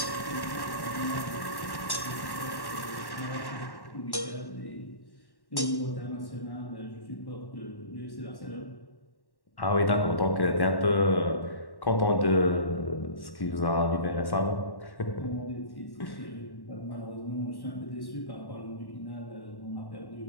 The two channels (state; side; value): late; right; 1.1 ms